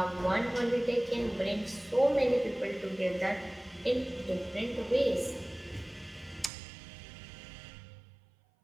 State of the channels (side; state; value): left; drops out; at 6.5 s